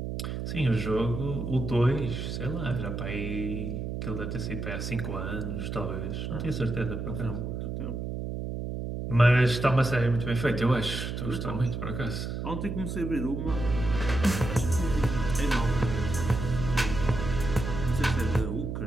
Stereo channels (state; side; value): noise; right; hum, 4 dB below the sound